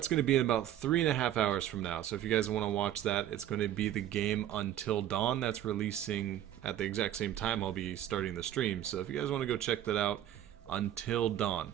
going to be in about 3.5 hours from now. So if you guys want to watch that, it's going to be the game Until Dawn. That's releasing at the exact same time I'll be starting the stream. So if you guys want to go check that out, Until Dawn.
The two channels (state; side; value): quieter; left; 11.7 dB